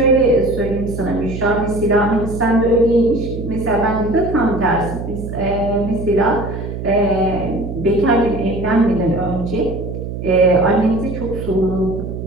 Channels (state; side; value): noise; right; hum, 7 dB below the sound